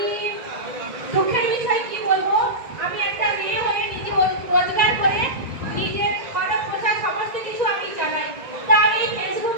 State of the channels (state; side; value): late; left; 1.9 ms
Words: দুঃখের বিষয় কি বলবো, আমি একটা মেয়ে হয়ে নিজে রোজগার করে নিজের খরচ পোশাক সমস্ত কিছু আমি চালাই। তা আমি